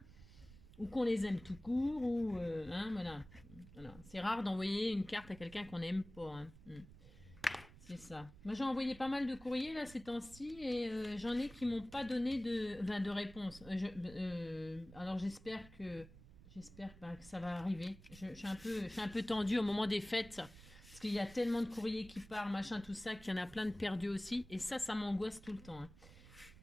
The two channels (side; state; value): right; noise; rumble, 19 dB below the sound